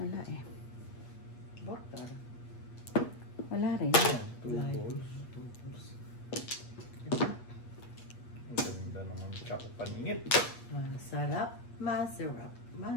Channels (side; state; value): right; late; 8.4 ms